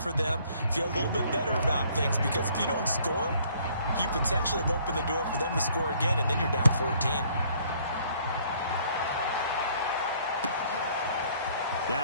for them. Feel a little bit better about things because if you don't score, you potentially have opened the door for them to score again, and then you're down 14.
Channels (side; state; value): both; inverted; correlation -0.61